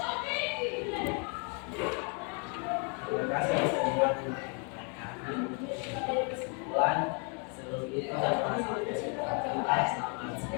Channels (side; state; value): right; quieter; 37.0 dB